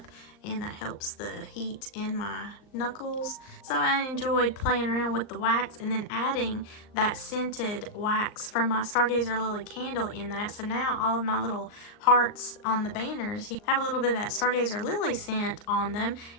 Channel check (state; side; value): late; right; 39 ms